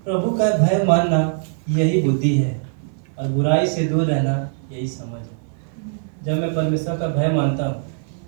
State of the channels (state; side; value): silent; left; 56 dB below the other